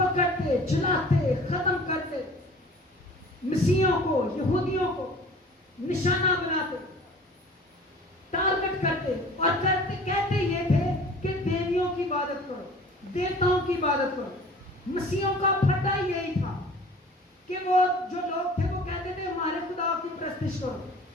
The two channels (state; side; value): normal; both; correlation 0.45